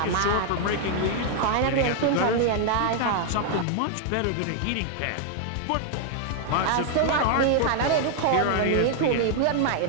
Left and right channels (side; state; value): both; different; correlation 0.00